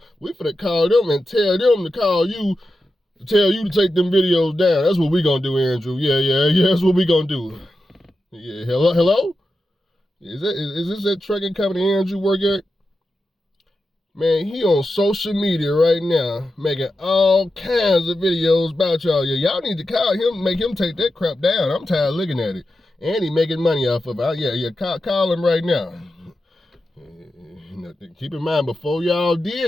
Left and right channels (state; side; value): normal; both; correlation 0.90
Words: We finna call them and tell them to call you to tell you to take them videos down. That's what we gonna do, Andrew. Yeah, that's what we gonna do. Yeah, hello? Is this that trucking company Andrew work at? Man, he on social media right now, making all kinds of videos about y'all. Yeah, y'all need to call him, make him take that crap down. I'm tired of looking at it. And he making money off of it. Yeah, call him right now. Keep in mind, before y'all